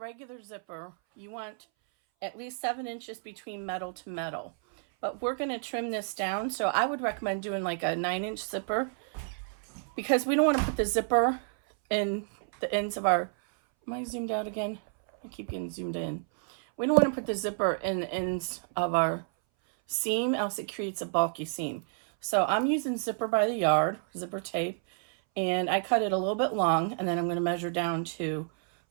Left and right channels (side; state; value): left; silent; 58 dB below the other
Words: zipper, you want at least 7 inches between metal to metal. But we're going to trim this down, so I would recommend doing like a 9" zipper because we don't want to put the zipper in the ends of our... Am I zoomed out again? I keep getting zoomed in. We don't want to put the zipper in the ends of our seam, else it creates a bulky seam. So I'm using zipper by the yard, zipper tape, and I cut it a little bit long, and then I'm going to measure down to